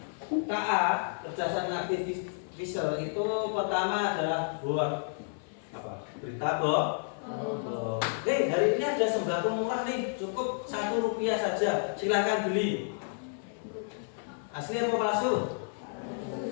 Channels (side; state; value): right; silent; 57 dB below the other